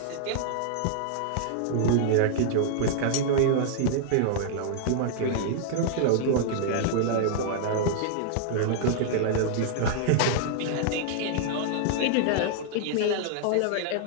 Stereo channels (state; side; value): different; both; correlation -0.01